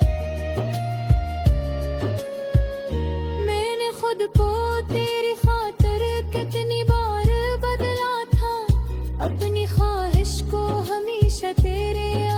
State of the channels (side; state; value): both; identical; correlation 1.00